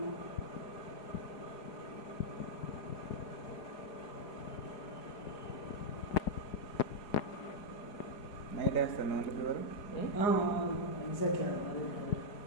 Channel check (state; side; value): late; right; 4.8 ms